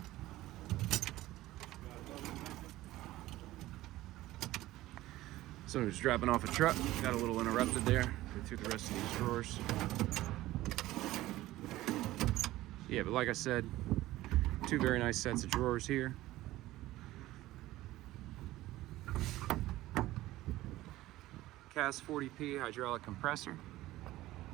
Someone was dropping off a truck, got a little interrupted there. Go through the rest of these drawers. Yeah, but like I said, two very nice sets of drawers here. Cast 40P hydraulic compressor.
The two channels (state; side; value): quieter; left; 16.5 dB